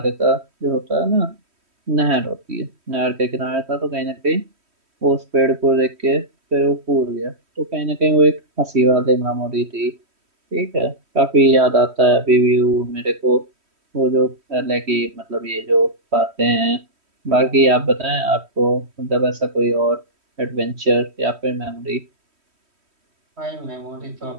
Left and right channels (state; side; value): late; left; 3.1 ms